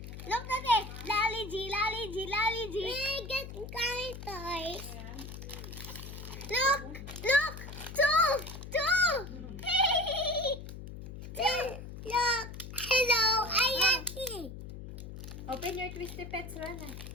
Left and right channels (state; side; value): noise; left; hum, 11 dB below the sound